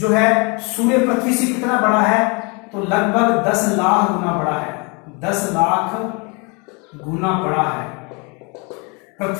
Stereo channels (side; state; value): right; quieter; 31.1 dB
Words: है, सूर्य पृथ्वी से कितना बड़ा है, तो लगभग 10 लाख गुना बड़ा है। 10 लाख गुना बड़ा है